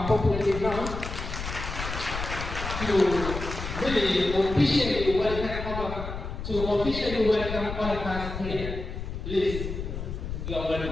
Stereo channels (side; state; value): left; noise; rumble, 6 dB below the sound